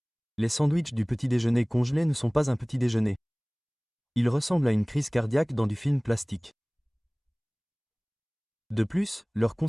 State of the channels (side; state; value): both; identical; correlation 1.00